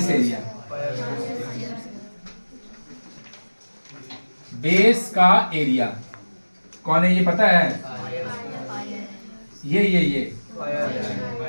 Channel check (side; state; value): both; inverted; correlation -1.00